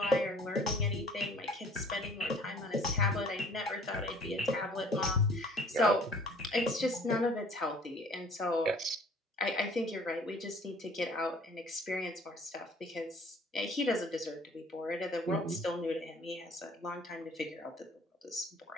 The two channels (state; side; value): normal; both; correlation 0.53